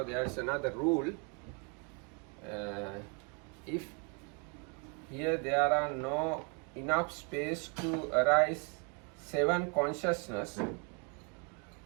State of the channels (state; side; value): quieter; left; 34.5 dB